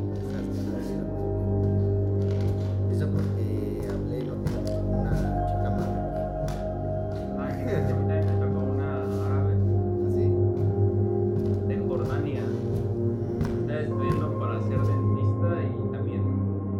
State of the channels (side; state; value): both; identical; correlation 1.00